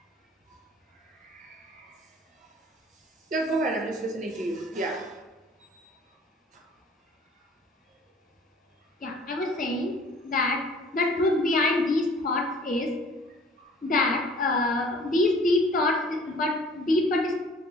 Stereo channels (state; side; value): normal; both; correlation 0.52